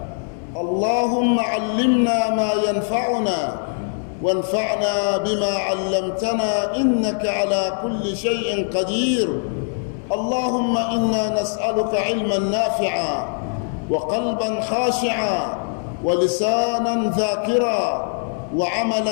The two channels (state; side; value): silent; right; digital silence